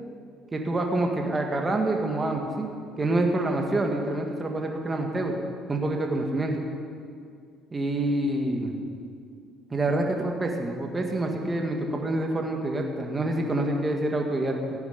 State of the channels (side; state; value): both; normal; correlation 0.76